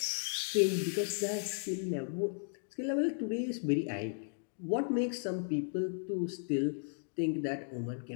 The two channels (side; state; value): right; silent; digital silence